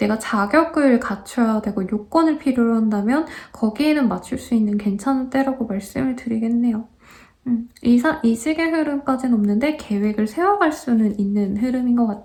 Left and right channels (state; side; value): identical; both; correlation 1.00